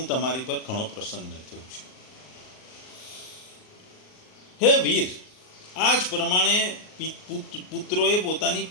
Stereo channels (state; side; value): late; right; 38 ms